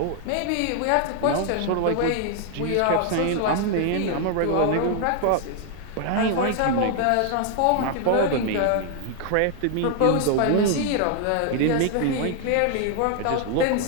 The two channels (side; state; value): both; different; correlation 0.00